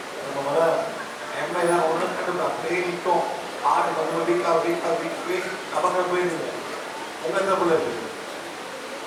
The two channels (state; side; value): identical; both; correlation 1.00